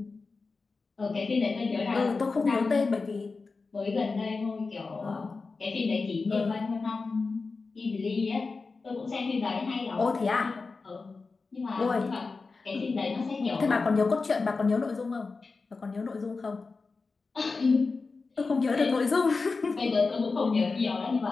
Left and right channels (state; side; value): quieter; right; 4.2 dB